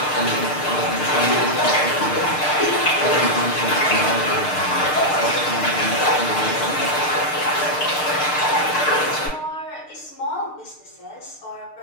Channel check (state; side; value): late; right; 6.6 ms